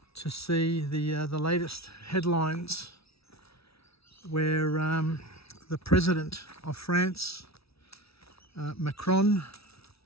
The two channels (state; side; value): late; right; 0.77 ms